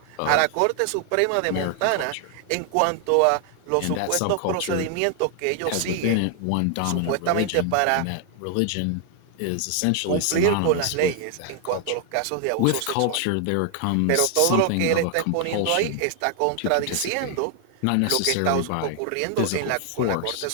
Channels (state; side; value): different; both; correlation 0.00